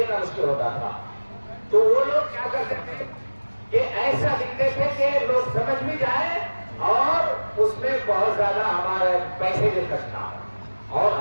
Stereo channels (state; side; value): inverted; both; correlation -1.00